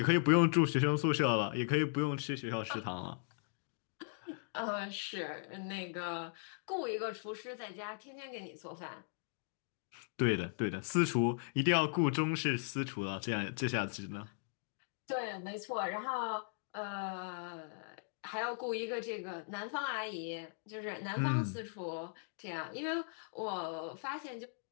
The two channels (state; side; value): silent; right; digital silence